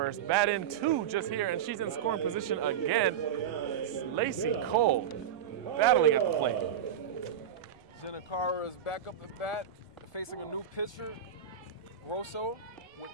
batted in 2 just here, and she's in scoring position again. Lacey Cole battling at the plate. Jenna Carr is back up at bat, facing a new pitcher, Grosso, with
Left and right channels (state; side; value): quieter; left; 8.9 dB